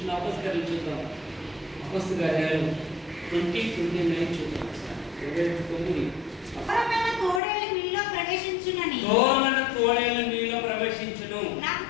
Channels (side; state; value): right; drops out; at 7.4 s